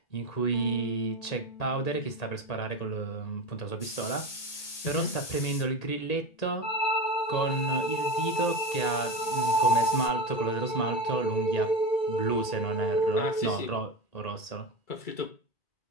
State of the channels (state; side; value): late; right; 1.8 ms